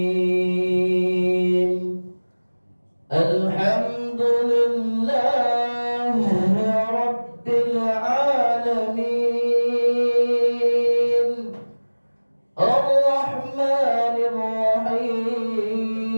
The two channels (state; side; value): inverted; both; correlation -1.00